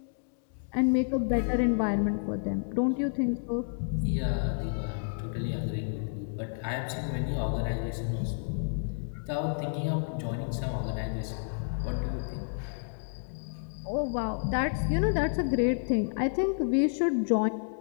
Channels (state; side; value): silent; right; digital silence